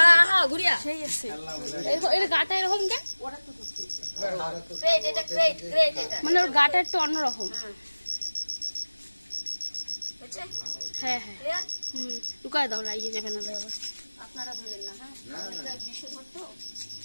গুড়িয়া সেই আছে। এর গাটা এরকম কেন? ওটা তো ক্রেট, এটা ক্রেট ক্রেট, এটা মানে ওর গাটা একটু অন্যরকম। হ্যাঁ হ্যাঁ, লুকায় দাও, লাগিয়ে যাবে না আবার। আপনারা ধরেন না। হ্যাঁ, এটা বিষ ধরতো,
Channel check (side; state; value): both; inverted; correlation -1.00